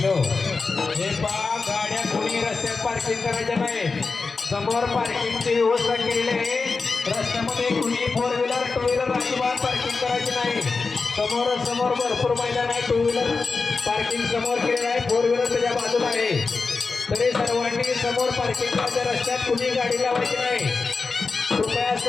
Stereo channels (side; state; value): right; quieter; 4.3 dB